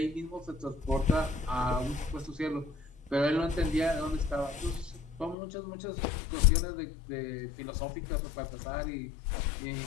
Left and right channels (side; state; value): right; drops out; at 5.4 s